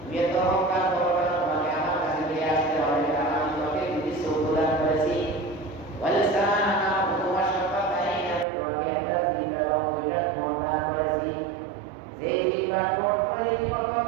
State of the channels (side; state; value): left; drops out; at 8.5 s